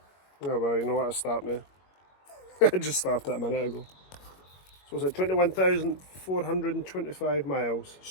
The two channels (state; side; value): late; right; 21 ms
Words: Oh well, you know what, I start now. I just started a minute ago. So it's at 21,425 miles,